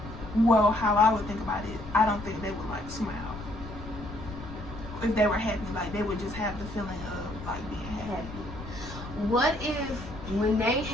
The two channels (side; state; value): left; noise; rumble, 12 dB below the sound